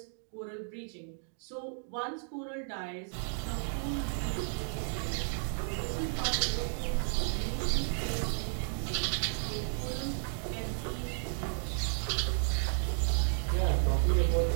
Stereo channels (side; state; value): left; silent; 56 dB below the other